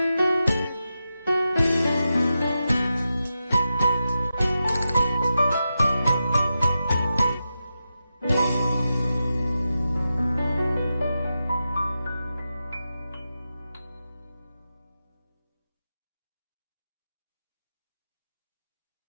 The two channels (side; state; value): both; inverted; correlation -0.90